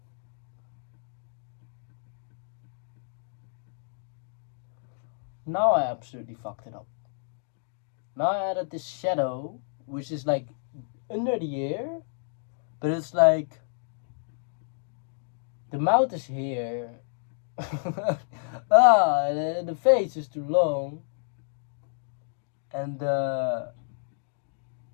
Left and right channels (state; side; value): silent; right; digital silence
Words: I absolutely fucked it up. Now I added this shadow, which is like under the ear, but it's like the mouth is here. The face is too long. And how